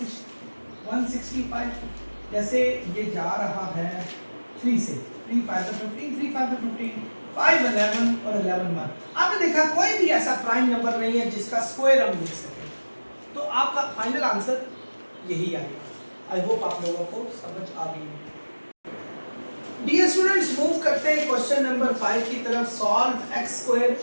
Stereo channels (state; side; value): inverted; both; correlation -1.00